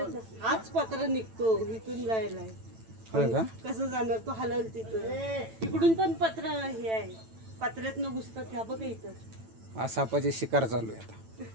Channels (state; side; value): late; left; 9.0 ms